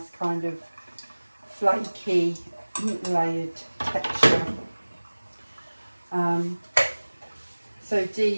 kind of flaky layered texture. So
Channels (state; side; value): inverted; both; correlation -1.00